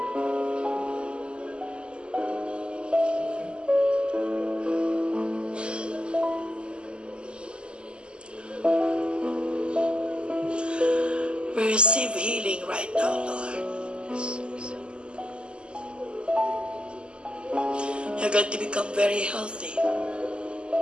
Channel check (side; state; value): left; late; 0.050 ms